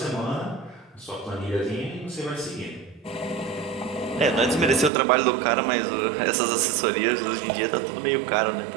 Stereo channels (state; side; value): drops out; left; at 4.9 s